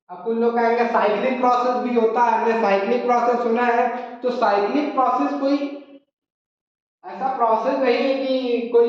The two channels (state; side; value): identical; both; correlation 1.00